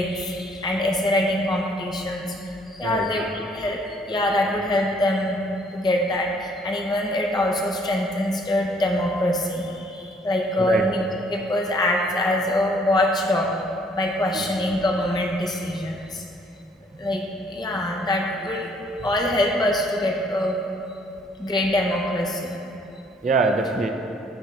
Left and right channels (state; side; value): normal; both; correlation 0.63